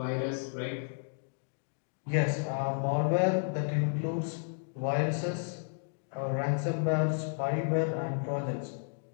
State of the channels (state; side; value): silent; right; digital silence